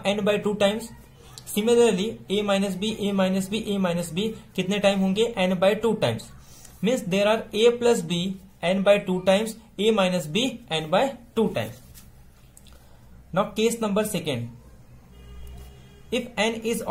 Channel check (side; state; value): both; identical; correlation 1.00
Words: n/2 times. Similarly a minus B कितने टाइम होंगे? n/2 times. Means there are a plus B n/2 times, a minus B n/2 times. Now case number 2. If n is